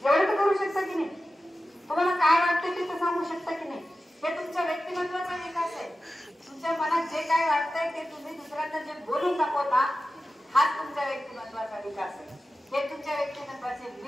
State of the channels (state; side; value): normal; both; correlation 0.94